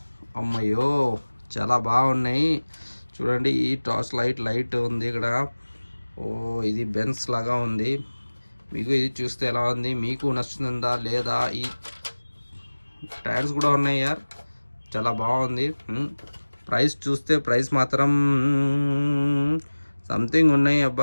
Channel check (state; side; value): inverted; both; correlation -1.00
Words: అమ్మయ్యో, చాలా బాగున్నాయి. చూడండి, ఈ టార్చ్ లైట్ ఉంది ఇక్కడ. ఓ, ఇది బెన్స్ లాగా ఉంది. మీకు ఇది చూస్తే ఎలా ఉంది, మీకు నచ్చుతుందా లేదా? ఈ టైర్స్ కూడా ఉన్నాయి యార్, చాలా బాగుంది. ప్రైస్ చూస్తే ప్రైస్ మాత్రం సంథింగ్ ఉన్నాయి